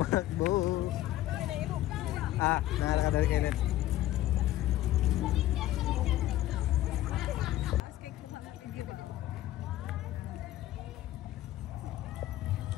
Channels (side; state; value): right; quieter; 14.4 dB